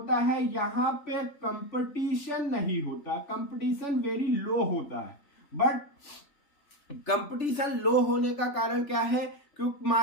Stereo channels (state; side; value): late; right; 3.3 ms